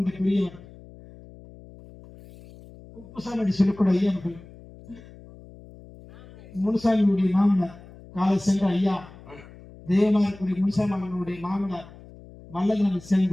பெரியவர் உப்புசாமி சொல்லக்கூடிய ஐயா அவர்கள் முனுசாமியுடைய மாமனார் காலை சென்ற ஐயா தேவமாரக்கூடிய முனுசாமியுடைய மாமனார் வல்லங்களை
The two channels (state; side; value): noise; left; hum, 20 dB below the sound